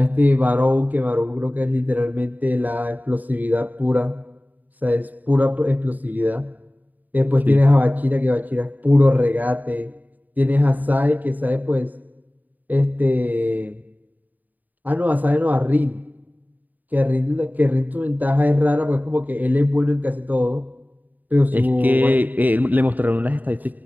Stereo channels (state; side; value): late; left; 0.083 ms